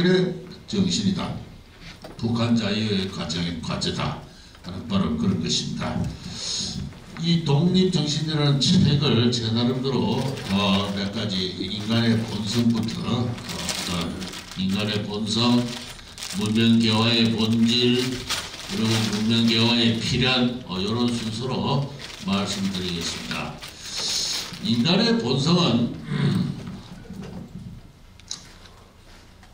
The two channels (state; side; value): identical; both; correlation 1.00